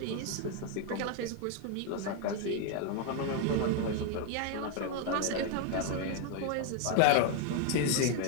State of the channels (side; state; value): both; different; correlation 0.01